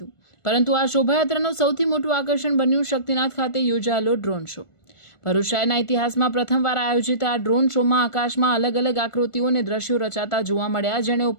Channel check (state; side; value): late; right; 1.4 ms